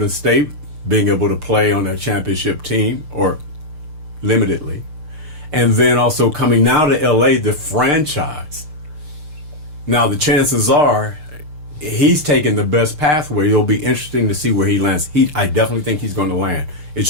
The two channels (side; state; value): left; late; 6.6 ms